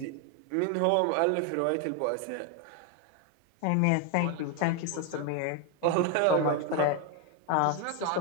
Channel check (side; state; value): both; different; correlation 0.01